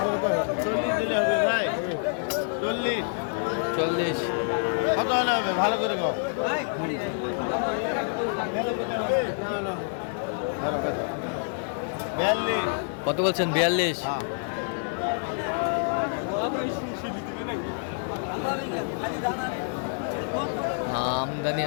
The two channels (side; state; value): right; silent; digital silence